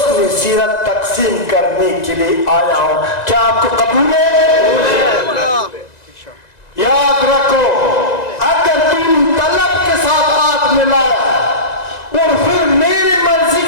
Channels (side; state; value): right; late; 1.9 ms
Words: سیرت تقسیم کرنے کے لیے آیا ہوں۔ کیا آپ کو قبول ہے؟ یاد رکھو، اگر تم طلب کے ساتھ ہاتھ ملایا اور پھر میری مرضی